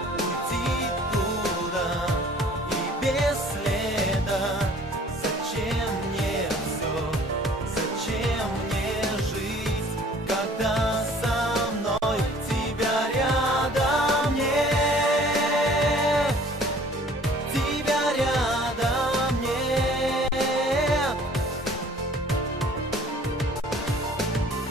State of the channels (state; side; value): normal; both; correlation 0.52